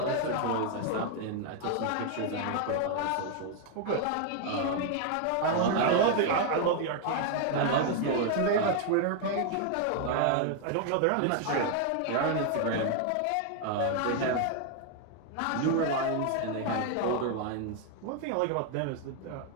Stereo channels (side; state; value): both; different; correlation 0.00